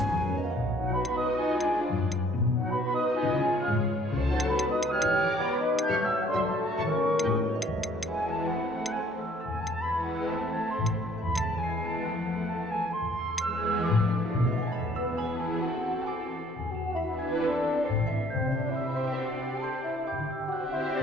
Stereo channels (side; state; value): both; normal; correlation 0.60